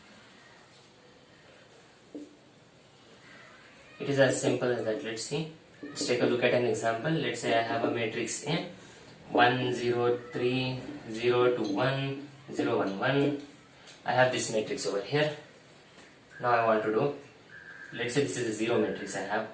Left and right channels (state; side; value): identical; both; correlation 1.00